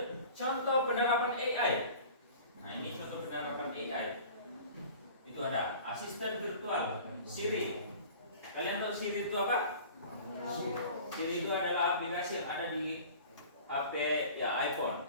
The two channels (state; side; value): inverted; both; correlation -0.43